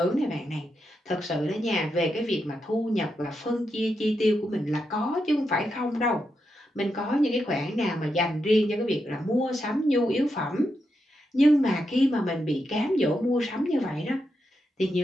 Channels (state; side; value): normal; both; correlation 0.85